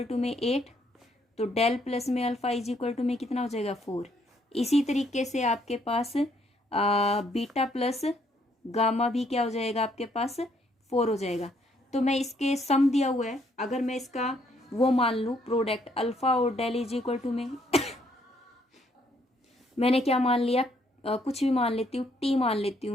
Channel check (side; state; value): both; normal; correlation 0.69